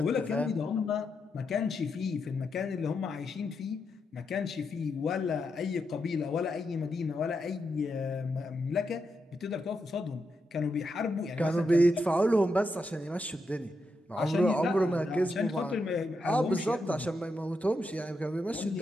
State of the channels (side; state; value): both; normal; correlation 0.84